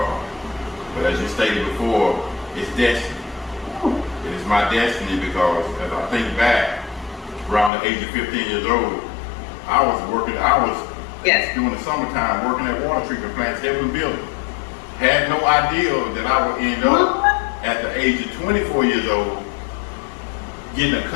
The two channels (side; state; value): right; drops out; at 7.7 s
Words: But as you stated before, it's destiny. It is my destiny because as I think back, around the age of 15 years old, I was during the summertime working at water treatment plants, every building. Had no idea that I would end up at the age of 24 years old getting a